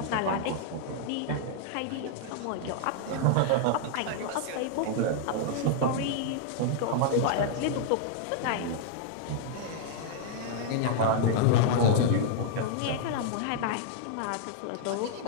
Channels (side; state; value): both; different; correlation -0.01